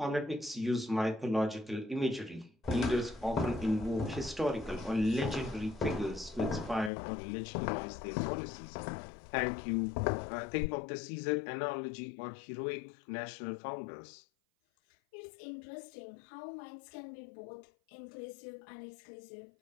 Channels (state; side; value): drops out; right; at 6.9 s